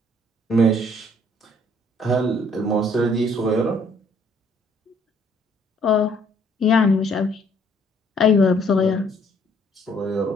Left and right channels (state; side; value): normal; both; correlation 0.63